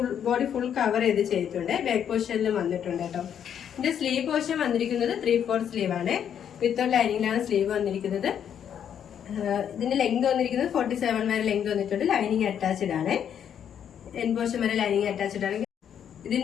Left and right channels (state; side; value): quieter; right; 8.9 dB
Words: ബോഡി ഫുൾ കവർ ചെയ്തിട്ടുണ്ട്. ബാക്ക് പോർഷനിലും വന്നിട്ടുണ്ട് കേട്ടോ. ഇതിന്റെ സ്ലീവ് പോർഷൻ വന്നിരിക്കുന്നത് 3/4 സ്ലീവ് ആണ്. വിത്ത് ലൈനിങ്ങിലാണ് സ്ലീവ് വന്നിരിക്കുന്നത്. ഇതിന്റെ ലെങ്ത് വന്നിരിക്കുന്നത് 47 വരെ ലെങ്ത് വന്നിട്ടുണ്ട്. ലൈനിങ് അറ്റാച്ച്ഡ് ആണ്. എൻ പോർഷൻ വരെ ലൈനിങ് അറ്റാച്ച്ഡ് ആണ്.